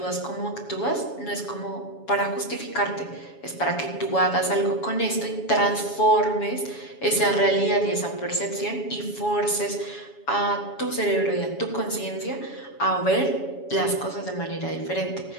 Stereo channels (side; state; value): right; late; 7.2 ms